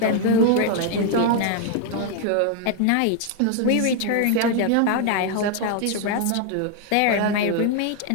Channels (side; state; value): both; different; correlation 0.01